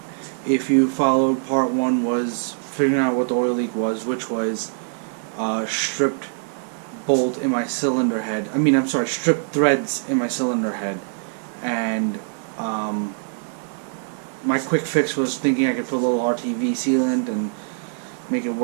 if you followed, part 1 was figuring out what the oil leak was, which was stripped bolt in my cylinder head. Stripped threads in my cylinder head. And my quick fix was thinking I could put a little RTV sealant and make it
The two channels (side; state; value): left; silent; digital silence